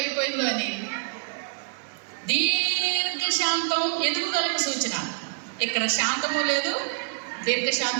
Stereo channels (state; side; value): silent; left; digital silence